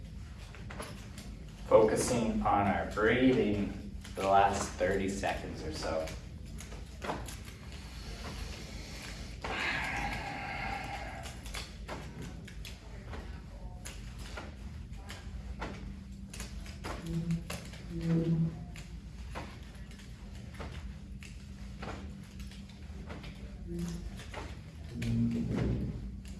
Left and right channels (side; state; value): both; identical; correlation 1.00